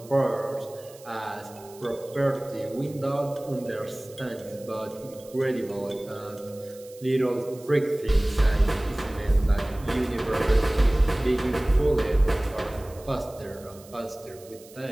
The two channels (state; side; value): noise; right; hiss, 22 dB below the sound